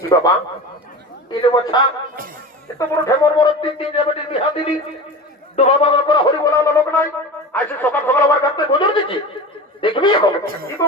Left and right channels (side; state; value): both; normal; correlation 0.31